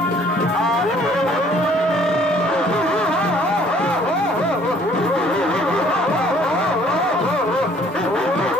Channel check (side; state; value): both; normal; correlation 0.58